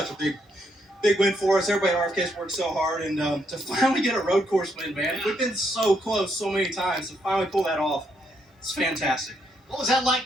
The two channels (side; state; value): both; normal; correlation 0.76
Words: a big win for us. Everybody at RFK's worked so hard, and to finally get a road course win, man. We've been so close so many times. To finally pull that off, it's fantastic. What was that like